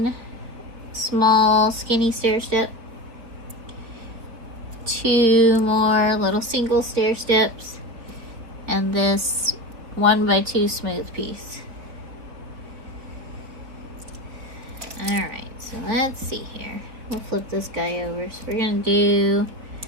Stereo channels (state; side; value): late; left; 3.9 ms